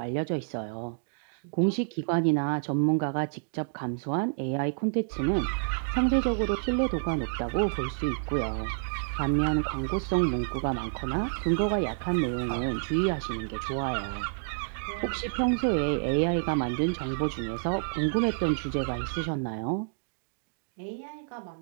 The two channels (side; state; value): left; silent; digital silence